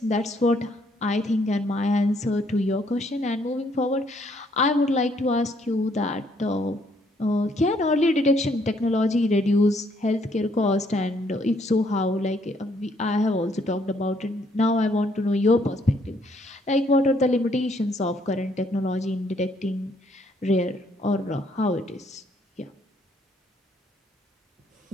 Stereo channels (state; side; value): normal; both; correlation 0.68